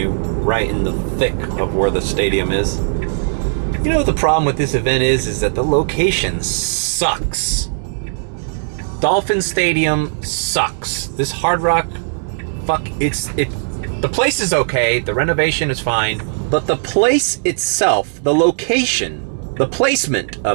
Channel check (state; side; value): silent; left; digital silence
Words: right in the thick of where the stadium is. You know what the problem with this event is that the location sucks. Dolphin Stadium sucks. This Hard Rock, the place is okay, the renovation is fine, But the place itself, the location, the placement